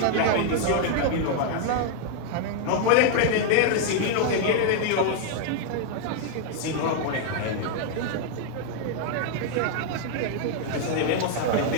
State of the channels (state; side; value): different; both; correlation 0.00